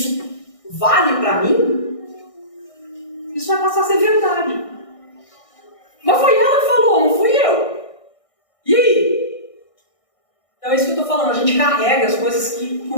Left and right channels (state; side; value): late; right; 1.6 ms